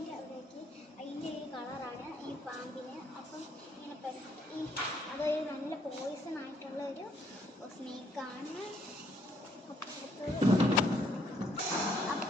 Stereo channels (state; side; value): normal; both; correlation 0.68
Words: അവിടേക്ക് അതിൻ്റെ ഒരു കളറാണ് ഈ പാമ്പിന്. അപ്പം ഇങ്ങനെ അതൊരു നല്ല പോയിസൺ ആയിട്ടുള്ള ഒരു സ്നേക്കാണ്.